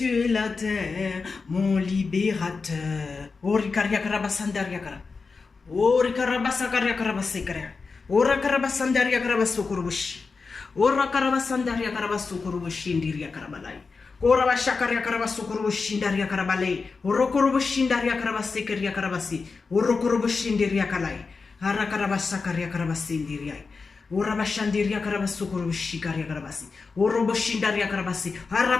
et la terre, mon libérateur. Ori karabasakaria karabasekara. Ora karabasandaria karabasukurubushi. Ora karabasandaria karabasukurubushi ndiria karabalai. Ora bashakaria karabasukurubushi ndaria karabalai. Ora kurubushi ndaria karabasekeria karabasi. Ora kurubushi ndiria kalai. Ara karabasakaria karabasindiria. Ora bashandiria karabasukurubushi karia karabasi. Ora boshindaria karabasi.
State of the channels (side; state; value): right; quieter; 4.6 dB